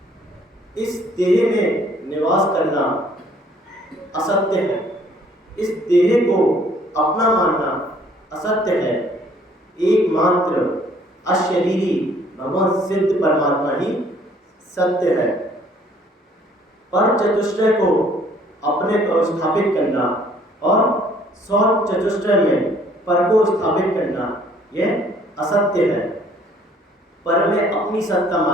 इस देह में निवास करना असत्य है, इस देह को अपना मानना असत्य है। एकमात्र अशरीरी भगवान सिद्ध परमात्मा ही सत्य है। पर चतुष्टय को अपने को स्थापित करना और सौ चतुष्टय में पर को स्थापित करना यह असत्य है। पर में अपनी सत्ता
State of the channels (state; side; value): normal; both; correlation 0.60